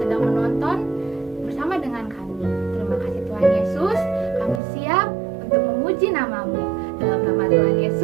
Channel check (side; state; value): left; drops out; at 4.6 s